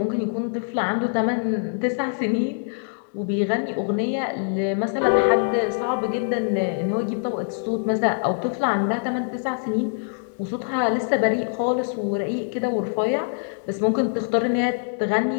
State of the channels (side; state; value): right; silent; 63 dB below the other